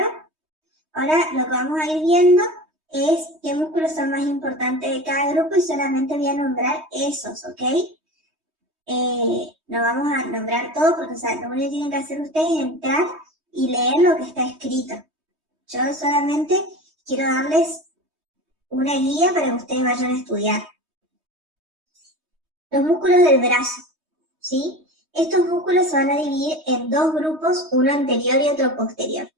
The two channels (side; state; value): left; late; 3.2 ms